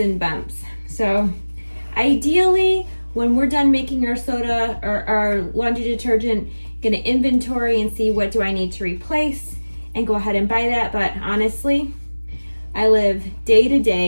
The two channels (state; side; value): inverted; both; correlation -1.00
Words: bumps. So ideally, when we're done making our soda or our laundry detergent, gonna inventory and see what do I need to replace and go ahead and buy that. But honestly, I live day to